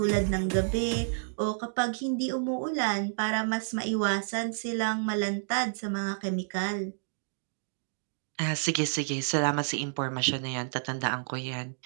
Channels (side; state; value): left; silent; digital silence